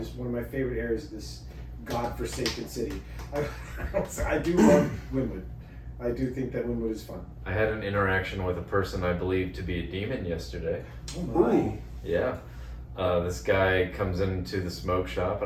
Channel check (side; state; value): both; identical; correlation 1.00